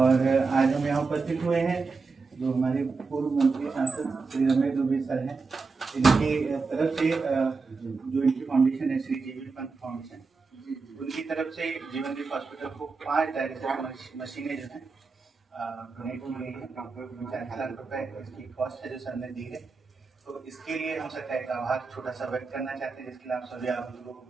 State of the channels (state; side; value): quieter; left; 4.4 dB